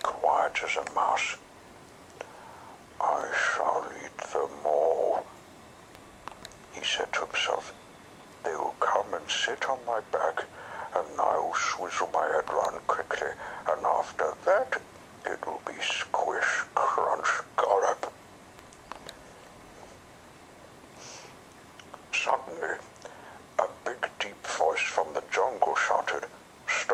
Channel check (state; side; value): identical; both; correlation 1.00